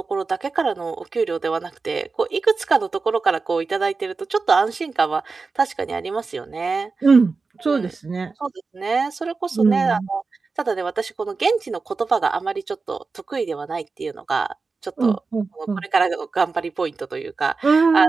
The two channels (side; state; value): left; quieter; 4.3 dB